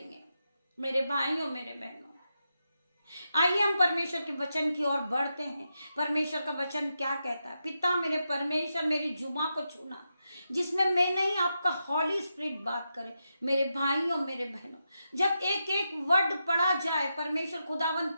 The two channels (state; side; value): inverted; both; correlation -0.87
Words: मेरे भाइयों मेरे बहनों, आइए हम परमेश्वर के वचन की ओर बढ़ते हैं। परमेश्वर का वचन क्या कहता है? पिता मेरे परमेश्वर मेरी जुबान को छूना, जिसमें मैं नहीं आपका हॉली स्पिरिट बात करे। मेरे भाइयों मेरे बहनों, जब एक एक वर्ड पढ़ा जाए, परमेश्वर खुदावन